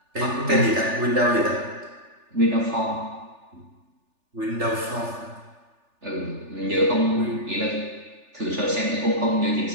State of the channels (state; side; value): late; left; 3.4 ms